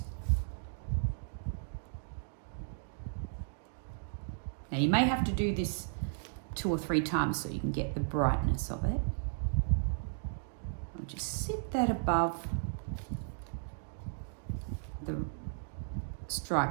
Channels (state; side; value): silent; left; digital silence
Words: Now you may have to do this 2 or 3 times so you can get the brightness of it. I'll just sit that above the